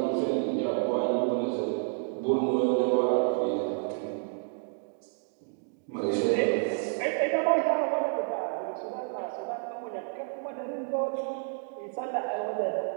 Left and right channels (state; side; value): silent; left; 58 dB below the other